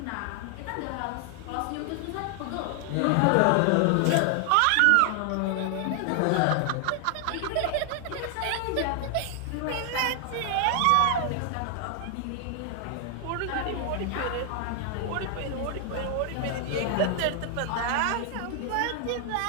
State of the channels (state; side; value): different; both; correlation 0.00